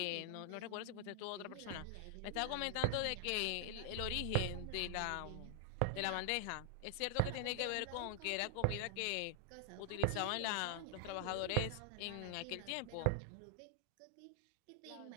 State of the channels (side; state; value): both; different; correlation -0.01